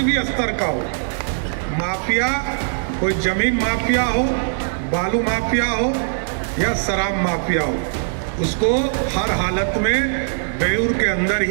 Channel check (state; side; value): silent; left; 57 dB below the other